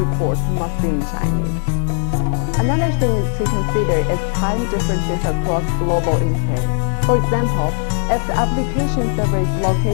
must be in Chinese. Another thing to consider is time differences across global instances. For example, if the application server is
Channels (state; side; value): silent; right; 64 dB below the other